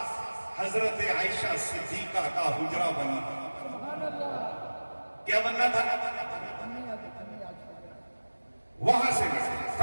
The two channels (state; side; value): inverted; both; correlation -1.00